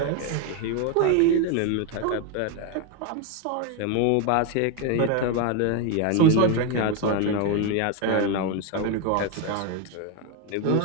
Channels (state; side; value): different; both; correlation 0.02